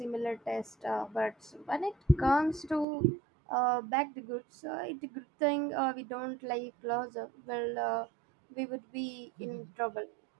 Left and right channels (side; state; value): left; drops out; at 2.9 s